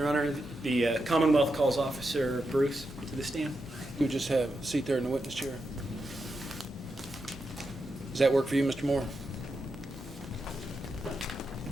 Honor, the Commonwealth calls Officer Bruce to the stand. You just have a seat there in the witness chair. Does that work for you, Mr. Moore?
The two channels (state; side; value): normal; both; correlation 0.86